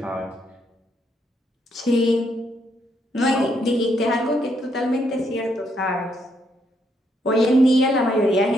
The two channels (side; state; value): both; normal; correlation 0.75